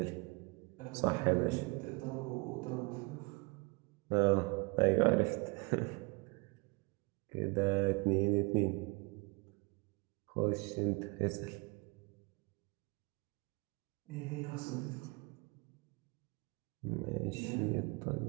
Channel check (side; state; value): left; quieter; 27.7 dB